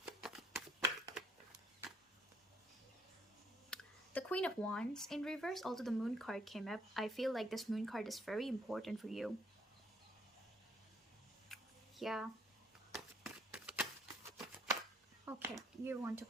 The Queen of Wands in reverse, although the Moon card came up, I feel like this Moon card is very important for you. Yeah. Okay, you want to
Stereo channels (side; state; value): both; normal; correlation 0.67